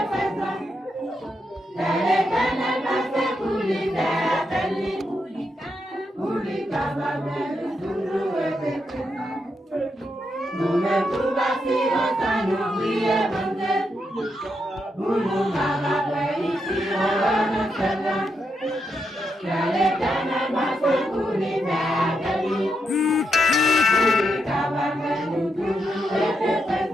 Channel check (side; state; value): both; normal; correlation 0.82